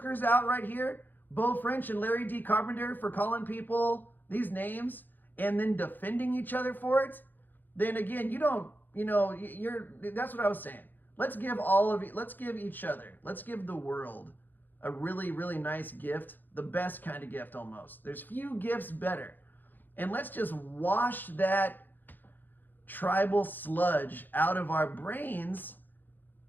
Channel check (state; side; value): late; right; 0.088 ms